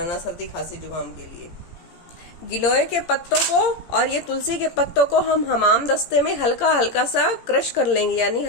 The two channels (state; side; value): late; right; 17 ms